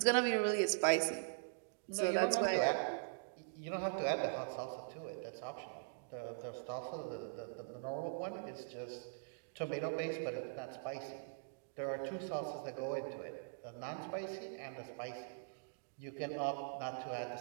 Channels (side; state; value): left; silent; digital silence